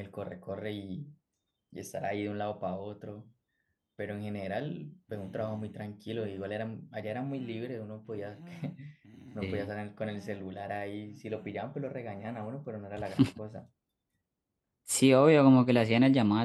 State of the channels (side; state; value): both; identical; correlation 1.00